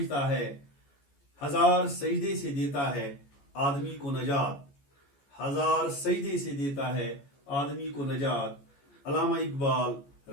है, हजार सजदे से देता है आदमी को नजात, हजार सजदे से देता है आदमी को नजात। अल्लामा इकबाल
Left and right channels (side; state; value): right; late; 14 ms